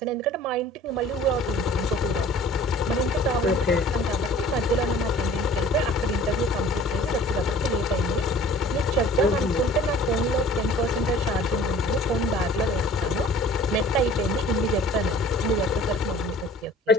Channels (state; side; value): normal; both; correlation 0.49